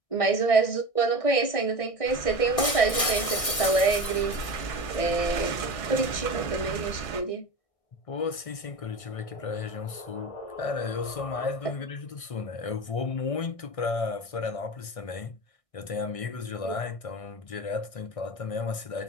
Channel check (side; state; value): right; late; 1.6 ms